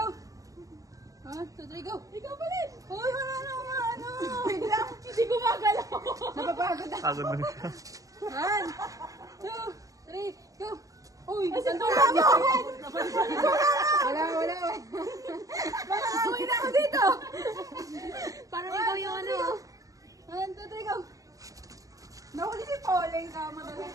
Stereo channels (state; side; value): late; left; 0.17 ms